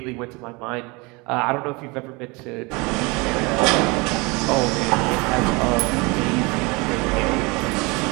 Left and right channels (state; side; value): quieter; left; 26.9 dB